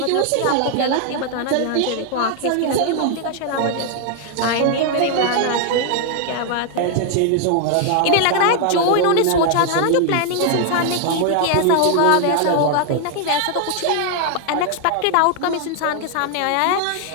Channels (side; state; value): both; different; correlation 0.00